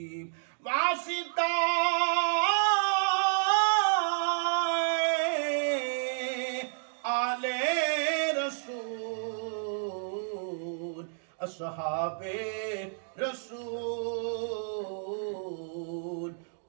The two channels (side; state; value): left; silent; digital silence